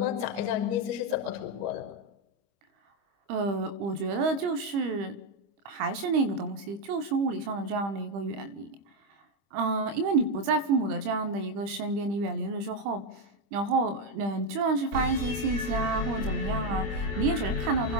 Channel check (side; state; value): left; late; 25 ms